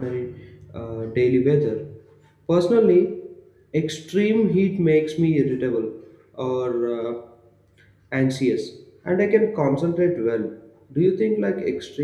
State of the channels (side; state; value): both; identical; correlation 1.00